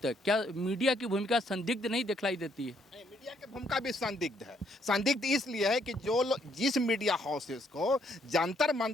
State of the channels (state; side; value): normal; both; correlation 0.70